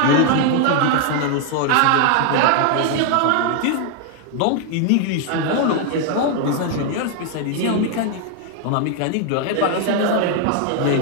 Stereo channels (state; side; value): different; both; correlation 0.00